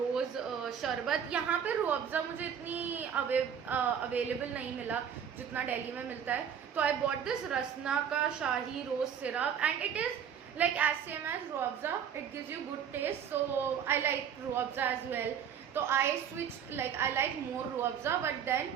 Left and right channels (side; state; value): left; quieter; 8.1 dB